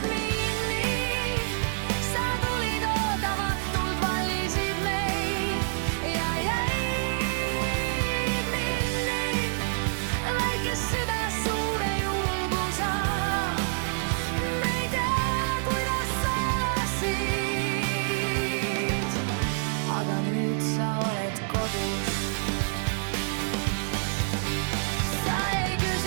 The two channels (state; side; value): silent; left; 60 dB below the other